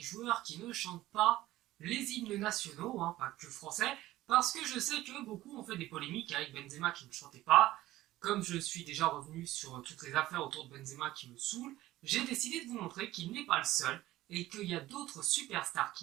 joueurs qui ne chantent pas les hymnes nationaux, pas que français, parce que je sais que beaucoup ont fait des polémiques avec Benzema qui ne chantait pas. Comme je suis déjà revenu sur toutes les affaires autour de Benzema qui me saoulent, j'ai décidé de vous montrer qu'il n'est pas le seul et qu'il y a d'autres superstars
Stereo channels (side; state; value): left; quieter; 16.0 dB